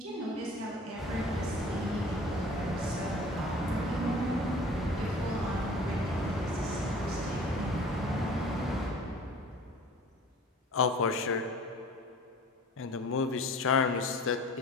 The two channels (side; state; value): both; normal; correlation 0.45